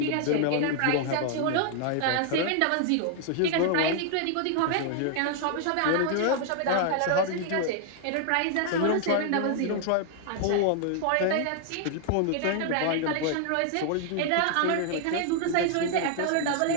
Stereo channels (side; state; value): both; different; correlation 0.00